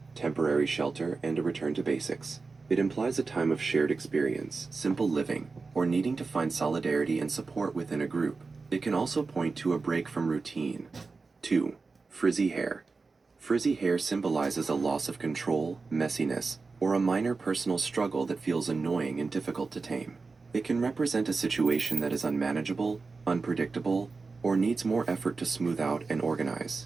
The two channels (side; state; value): left; quieter; 4.2 dB